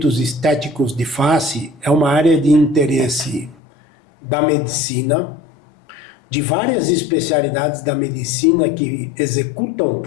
estéticos de face é uma área de interesse da medicina, de várias especialidades da medicina que executam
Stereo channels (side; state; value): right; drops out; at 3.6 s